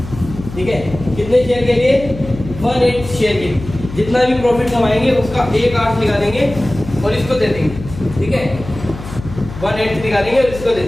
ठीक है, कितने शेयर के लिए 1/8 शेयर के लिए। जितना भी प्रॉफिट कमाएंगे उसका 1/8 निकाल देंगे और इसको दे देंगे। ठीक है 1/8 निकालेंगे और इसको दे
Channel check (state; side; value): noise; left; hum, 12 dB below the sound